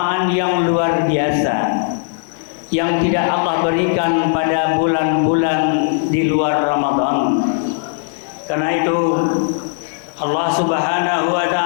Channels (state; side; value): silent; right; digital silence